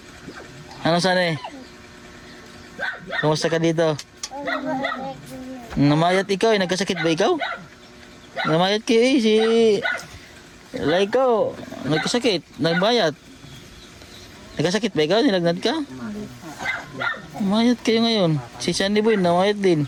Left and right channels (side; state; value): both; identical; correlation 1.00